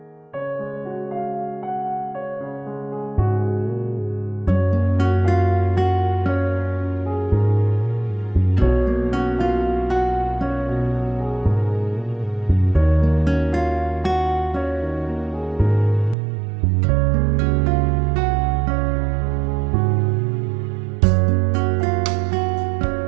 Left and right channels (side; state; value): left; drops out; at 16.2 s